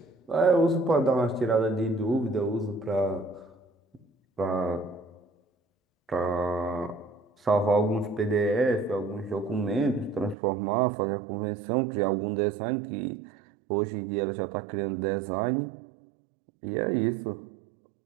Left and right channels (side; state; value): left; drops out; at 10.4 s